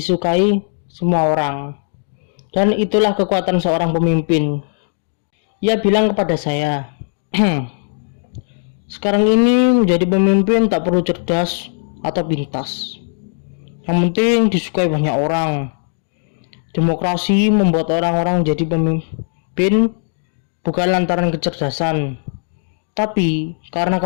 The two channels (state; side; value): silent; right; digital silence